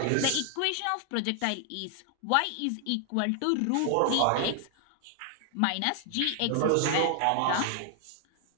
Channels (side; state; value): both; different; correlation 0.00